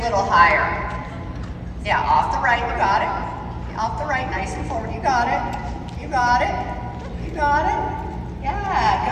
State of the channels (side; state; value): both; identical; correlation 1.00